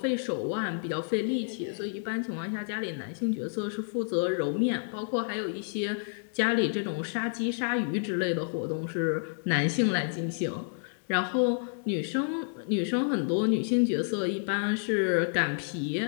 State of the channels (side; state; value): right; silent; digital silence